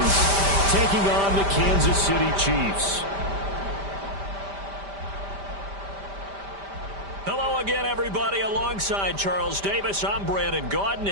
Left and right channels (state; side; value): late; left; 5.1 ms